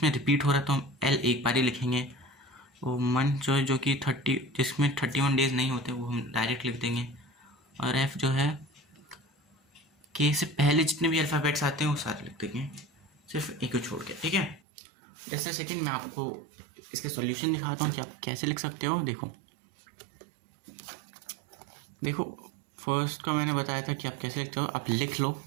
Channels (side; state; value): left; drops out; at 14.6 s